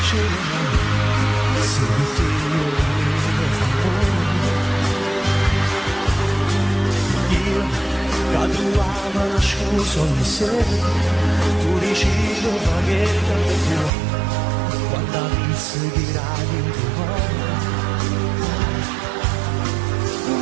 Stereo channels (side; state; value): left; drops out; at 13.9 s